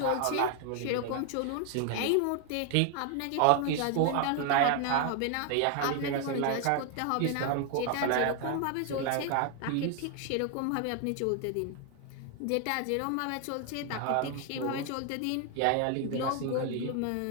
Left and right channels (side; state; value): both; different; correlation 0.00